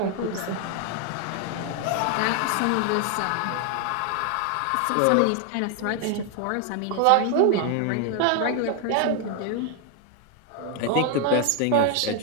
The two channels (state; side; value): different; both; correlation 0.01